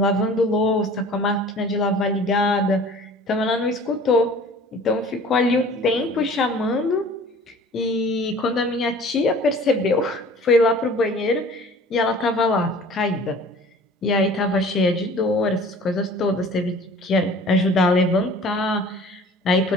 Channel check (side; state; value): both; normal; correlation 0.47